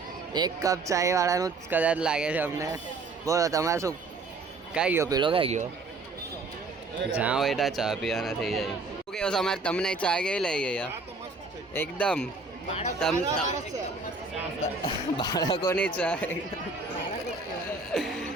એક કપ ચાય વાળાનું જ કદાચ લાગે છે અમને. બોલો તમારે શું? કાંઈ ગયો પેલો? કાંઈ ગયો? જ્યાં હોય ત્યાં ચા પીવાના થઈ જાય. શું કેવો તમારે? તમને ચા કેવી લઈ ગઈ? એકદમ બાળકોની ચા.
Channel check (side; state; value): left; quieter; 3.7 dB